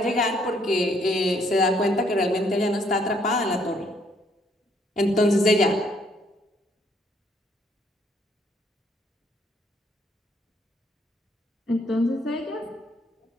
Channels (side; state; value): both; normal; correlation 0.68